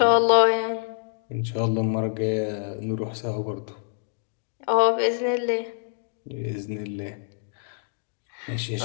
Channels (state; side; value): silent; right; digital silence